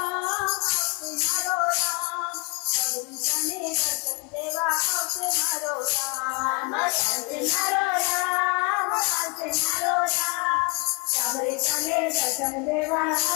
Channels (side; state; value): right; quieter; 30.5 dB